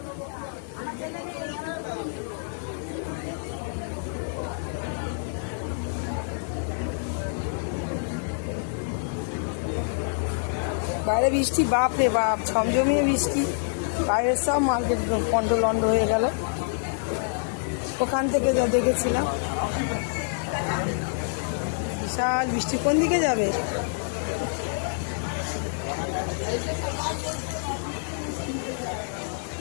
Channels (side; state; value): right; silent; digital silence